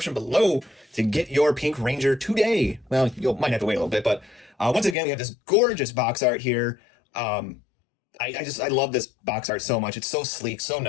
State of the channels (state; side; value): drops out; right; at 5.0 s